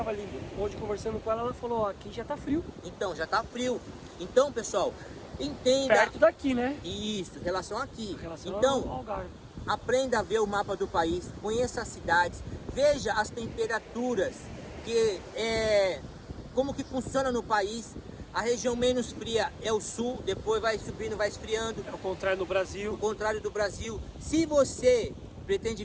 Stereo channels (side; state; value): both; identical; correlation 1.00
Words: ali hoje conversando com ela, ela falou, aqui já está frio. Então, já está frio. Então, pessoal, entenda... Perto daqui, né? Isso, em relação aqui. Então, ao Algarve. Aprenda a ver o mapa do país, conheça as cidades, veja as temperaturas, como que funciona no país. A região menos fria é o sul, depois vai subindo, vai esfriando. É o contrário do Brasil. O contrário do Brasil. Se você pretende